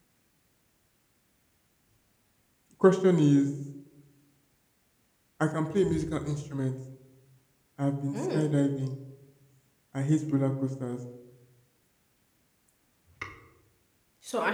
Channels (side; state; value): both; identical; correlation 1.00